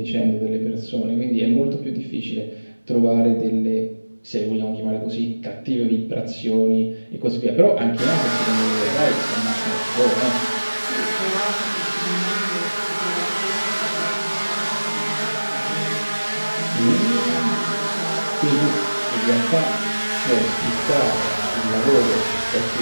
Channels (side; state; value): both; inverted; correlation -1.00